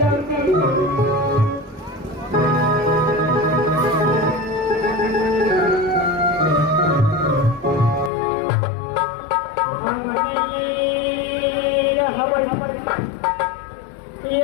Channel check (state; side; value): drops out; right; at 8.1 s